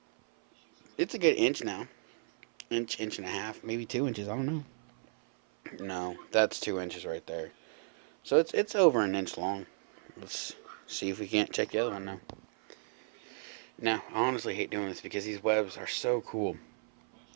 It's a good inch now. Inch and a half, maybe 2 inches. I don't know. No, that's 2 inches right there. So it's over an inch long. Let's see if we can't check the other one now. Now, I honestly hate doing this because these webs are so cool.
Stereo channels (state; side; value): silent; left; 55 dB below the other